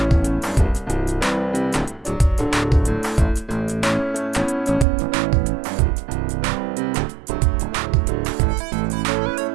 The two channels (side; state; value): left; drops out; at 4.9 s